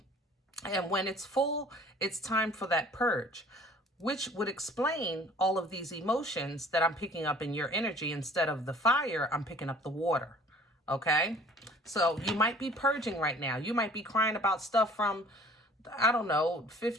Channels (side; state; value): both; normal; correlation 0.51